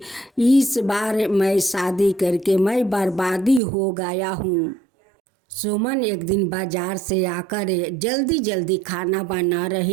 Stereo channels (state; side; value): drops out; left; at 3.6 s